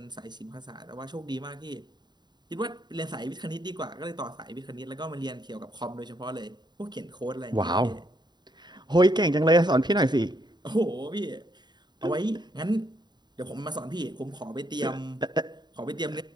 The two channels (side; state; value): left; late; 0.21 ms